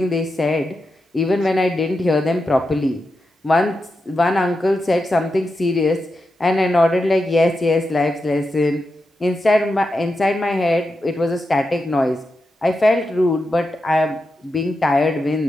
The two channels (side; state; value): both; normal; correlation 0.88